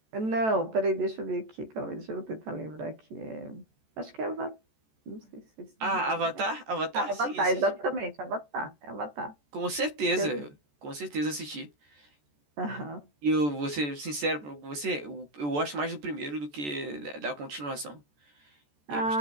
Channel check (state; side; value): late; left; 14 ms